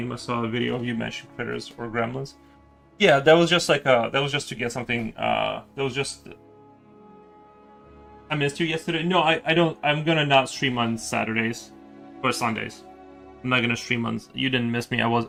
I saw a video of you mentioning critters or gremlins. Yeah, that was just that was just to get something. That was just. I missed you yesterday. No, I don't. I'm gonna not stream on Saturdays or Sundays. I'm not gonna stream on. You didn't miss me. I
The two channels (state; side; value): identical; both; correlation 1.00